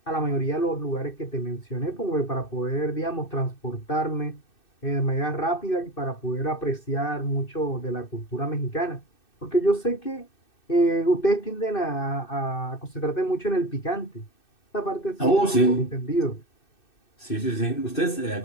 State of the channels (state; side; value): late; right; 2.6 ms